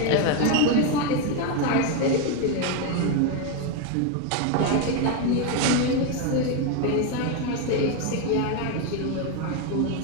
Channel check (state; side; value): different; both; correlation 0.02